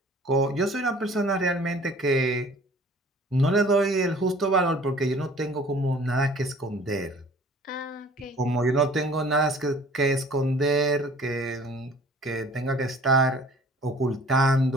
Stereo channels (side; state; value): both; normal; correlation 0.51